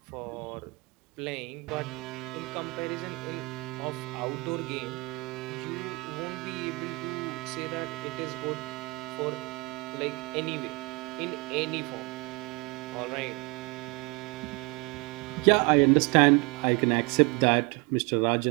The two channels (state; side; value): quieter; left; 27.8 dB